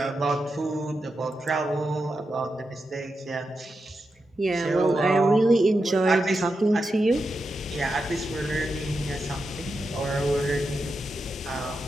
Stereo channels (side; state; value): both; normal; correlation 0.88